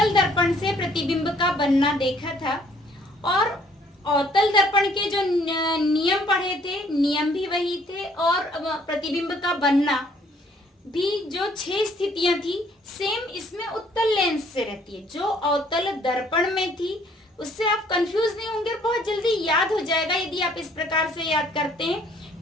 दर्पण से प्रतिबिंब का बनना देखा था और अवतल दर्पण के जो नियम पढ़े थे, नियम भी वही थे और प्रतिबिंब का बनना भी जो 6 स्थितियां थी सेम इसमें उत्तल लेंस से रहती है। जो अवतल दर्पण में थी उससे आप कंफ्यूज नहीं होंगे, बहुत जल्दी याद हो जाएगा यदि आप इस प्रकार से याद करते हैं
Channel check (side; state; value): both; normal; correlation 0.61